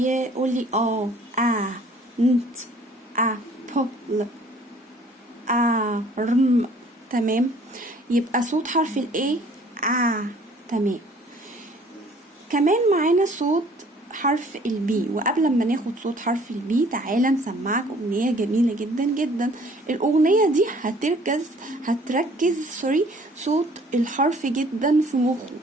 لي ant apple arm. تمام. يبقى صوت حرف ال A تمام. كمان معانا صوت حرف البي. وقبل ما ناخد صوت حرف البي تعالى نسمعك اغنية جميلة جدا جدا. الاغنية دي هتركز صوت الحرف جدا في مخه،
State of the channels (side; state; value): both; normal; correlation 0.55